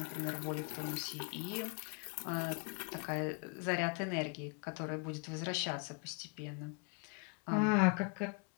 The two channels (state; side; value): quieter; right; 34.8 dB